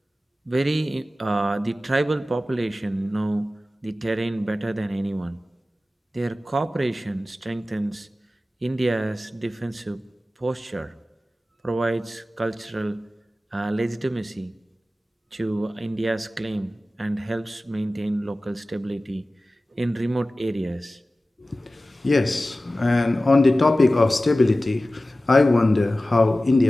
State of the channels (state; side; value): normal; both; correlation 0.96